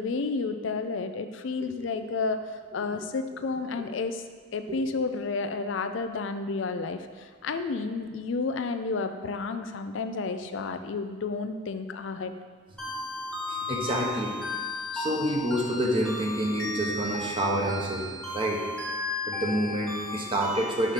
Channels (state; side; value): normal; both; correlation 0.31